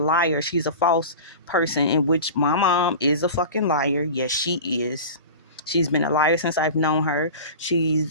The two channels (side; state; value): both; inverted; correlation -0.33